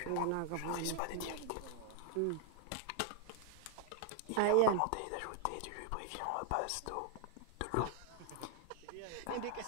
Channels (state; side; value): different; both; correlation -0.01